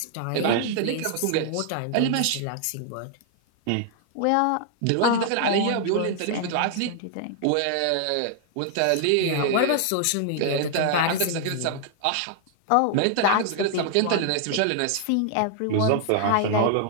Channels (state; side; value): different; both; correlation 0.00